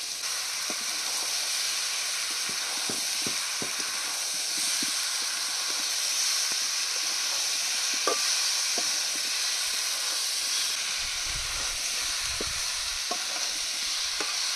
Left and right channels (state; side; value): identical; both; correlation 1.00